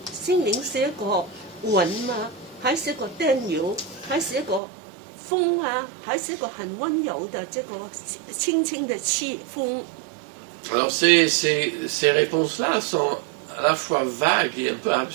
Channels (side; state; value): left; drops out; at 4.6 s